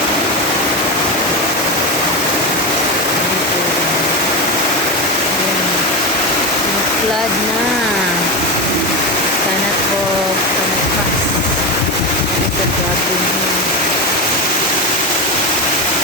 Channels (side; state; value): both; normal; correlation 0.17